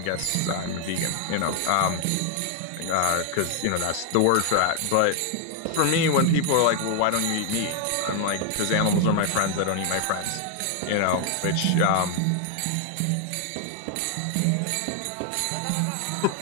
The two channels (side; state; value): both; different; correlation 0.00